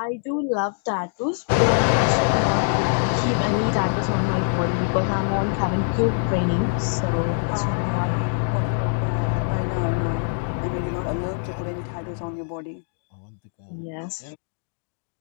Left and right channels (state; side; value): silent; right; digital silence